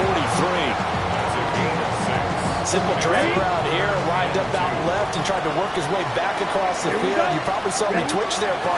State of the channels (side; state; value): both; identical; correlation 1.00